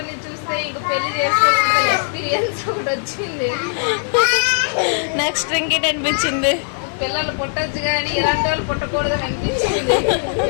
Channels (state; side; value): silent; right; digital silence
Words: చూస్తే ఇంక పెళ్లి చేసుకోకుండా ఎక్స్పీరియన్స్ ఒకటి వచ్చింది. నెక్స్ట్ ఇంకేంటి అనిపించింది? పిల్లలు పుట్టచ్చు కానీ ఇలాంటి వాళ్ళు పుట్టకూడదని అనిపించింది.